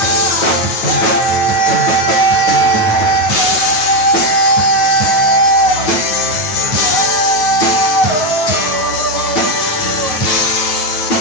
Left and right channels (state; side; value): late; right; 9.2 ms